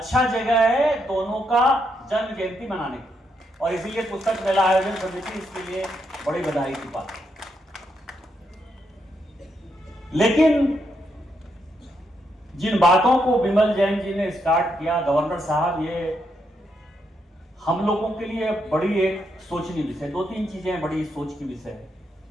जगह है दोनों का जन्म जयंती मनाने की। और इसीलिए पुस्तक मेला आयोजन समिति इसके लिए बड़ी बधाई की बात है। लेकिन जिन बातों को विमल जैन जी ने स्टार्ट किया, गवर्नर साहब, ये हम लोगों के लिए बड़ी एक सोचनीय विषय, 2-3 चीजें बड़ी सोच की विषय है।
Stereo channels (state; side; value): normal; both; correlation 0.79